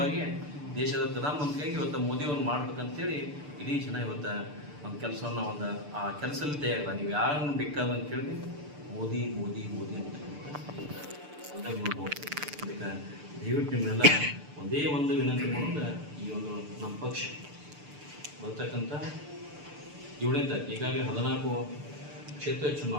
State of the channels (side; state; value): left; late; 6.8 ms